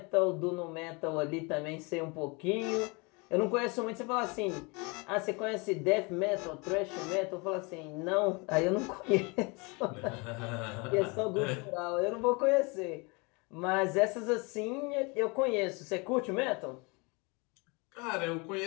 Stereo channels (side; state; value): right; quieter; 29.0 dB